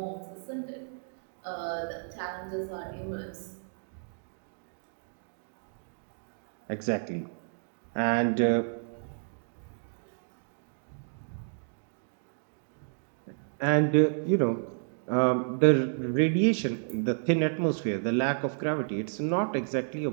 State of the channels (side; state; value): left; silent; digital silence